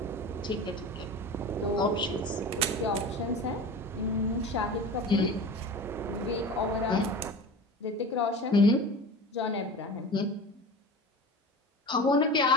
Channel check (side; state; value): both; normal; correlation 0.34